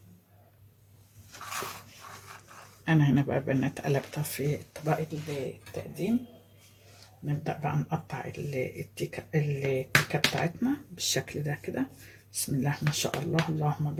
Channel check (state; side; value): identical; both; correlation 1.00